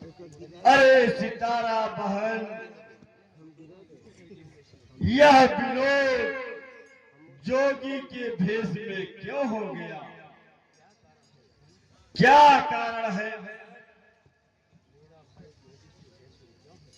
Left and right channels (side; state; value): both; identical; correlation 1.00